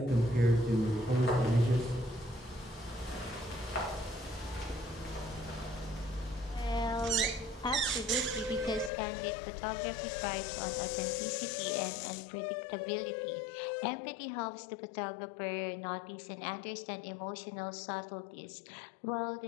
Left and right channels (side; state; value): right; drops out; at 8.9 s